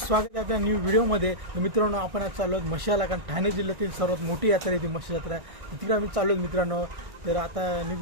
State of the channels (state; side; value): late; left; 1.6 ms